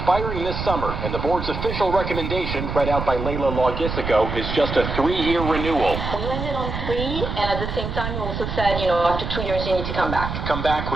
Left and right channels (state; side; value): noise; right; rumble, 5 dB below the sound